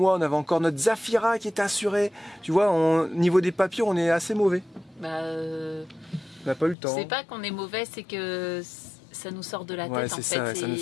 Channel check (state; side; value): drops out; right; at 6.8 s